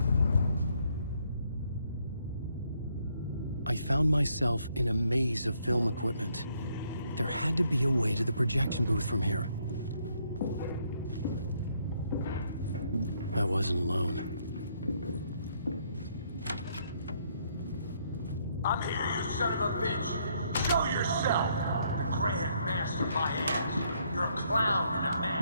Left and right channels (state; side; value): inverted; both; correlation -0.71